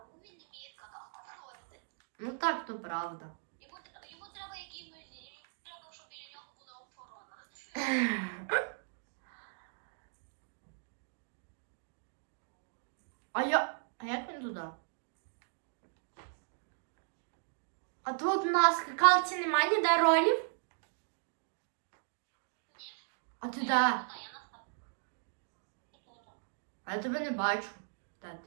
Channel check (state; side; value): silent; left; digital silence